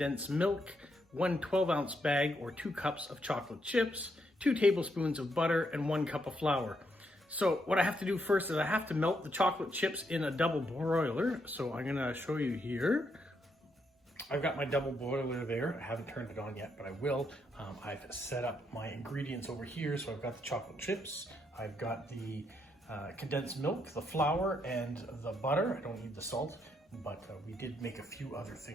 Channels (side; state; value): both; normal; correlation 0.77